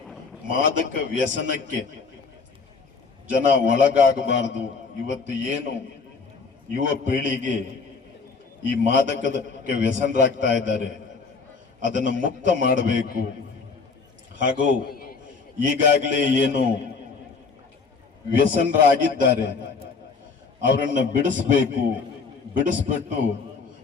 ಮಾದಕ ವ್ಯಸನಕ್ಕೆ ಜನ ಒಳಗಾಗಬಾರದು. ಇವತ್ತು ಏನು ಯುವ ಪೀಳಿಗೆ ಈ ಮಾದಕಕ್ಕೆ ವ್ಯಸನರಾಗ್ತಾ ಇದ್ದಾರೆ, ಅದನ್ನು ಮುಕ್ತ ಮಾಡಬೇಕು. ಹಾಗೂ ಈಗಾಗಲೇ ಏನು ವ್ಯಸನರಾಗಿದ್ದಾರೆ ಅವರನ್ನು ಬಿಡಿಸ್ಬೇಕು. ಬಿಡಿಸ್ಬಿಟ್ಟು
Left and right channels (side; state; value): right; quieter; 4.7 dB